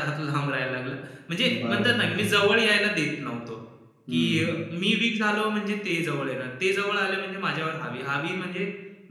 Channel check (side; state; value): both; identical; correlation 1.00